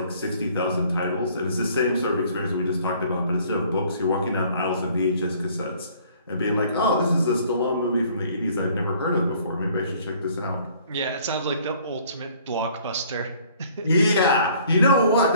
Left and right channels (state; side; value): inverted; both; correlation -0.57